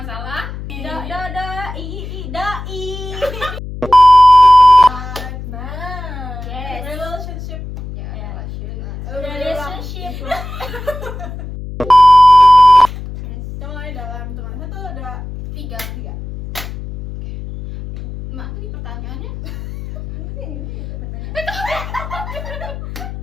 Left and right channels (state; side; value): noise; left; hum, 10 dB below the sound